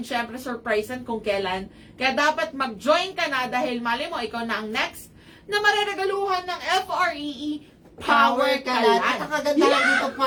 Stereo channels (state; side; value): identical; both; correlation 1.00